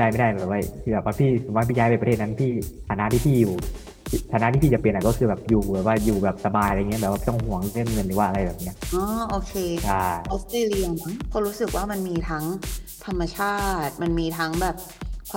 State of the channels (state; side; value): identical; both; correlation 1.00